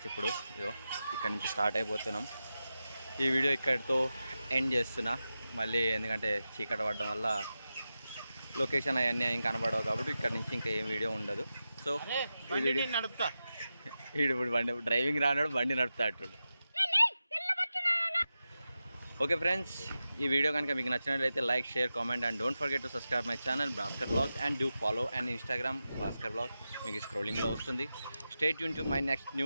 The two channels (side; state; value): both; inverted; correlation -0.92